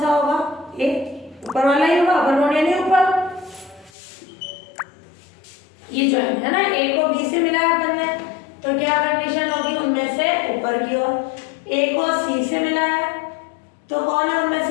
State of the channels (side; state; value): right; drops out; at 3.9 s